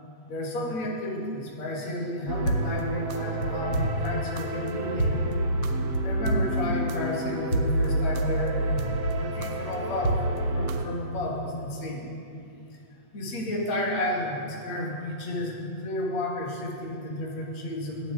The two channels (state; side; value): late; right; 8.2 ms